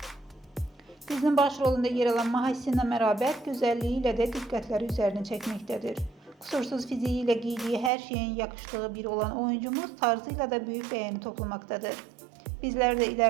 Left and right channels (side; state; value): left; drops out; at 7.9 s